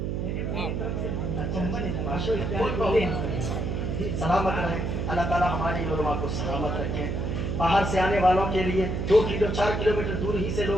سلامت رہیں، اللہ تعالیٰ ہماری علماء کو سلامت رکھیں۔ باہر سے آنے والوں کے لیے 2 کلو 4 کلومیٹر دور ہی سے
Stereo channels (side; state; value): right; noise; hum, 1 dB below the sound